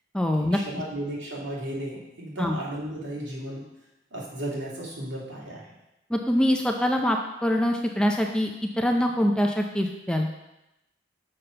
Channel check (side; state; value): both; normal; correlation 0.86